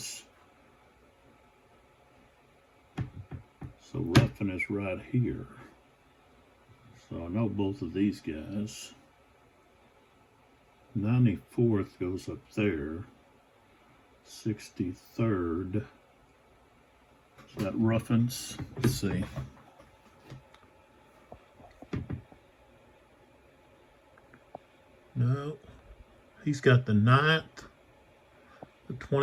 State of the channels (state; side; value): identical; both; correlation 1.00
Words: So Ruffin is right here. So I know both of these guys. 94th goes up there. 63rd. Is that Ruffin's? Let's see. No. He's got the 9th, the